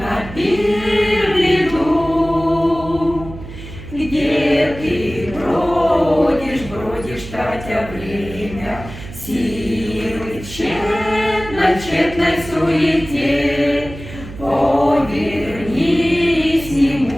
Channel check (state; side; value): noise; right; hum, 13 dB below the sound